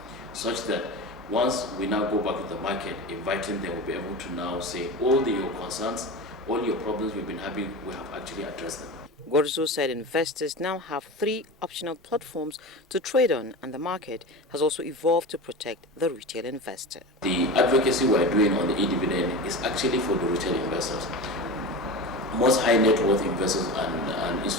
such that once we now go back to the market, inviting them, will be able to now say all your concerns, all your problems we've been having, we have actually addressed them. Gorzo said investors now have 3 optional platforms to trade on, and the market has also evolved to protect the retail investor. The advocacy we're doing on the e-dividend is actually for the retail investors. most high net worth investors and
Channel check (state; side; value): normal; both; correlation 0.28